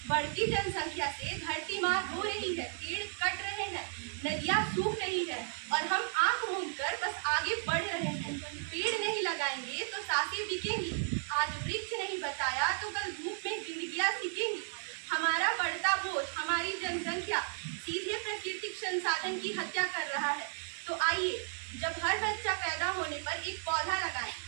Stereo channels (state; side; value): silent; left; digital silence